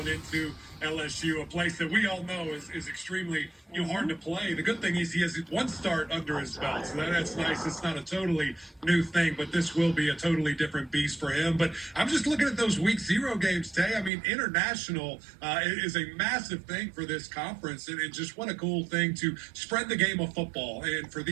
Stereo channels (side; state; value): left; drops out; at 14.1 s